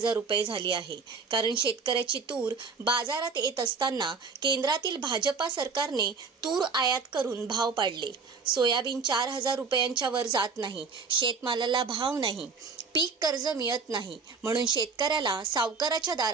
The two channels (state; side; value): quieter; left; 4.9 dB